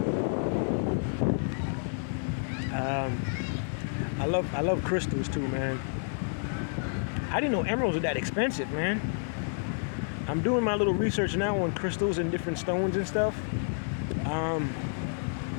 I love crystals too, man. I didn't know emeralds were that expensive, man. I'm doing my little research now on crystals and different stones and stuff.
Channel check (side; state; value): right; silent; digital silence